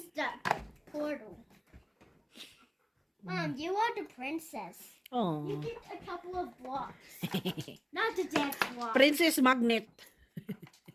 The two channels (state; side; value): identical; both; correlation 1.00